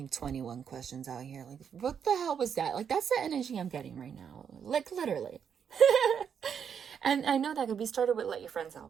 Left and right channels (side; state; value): left; quieter; 7.5 dB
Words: 21 questions out here. Like, what the hell was that? Like, that's the energy I'm getting right now. Like, literally. And I know that could be started with let your friends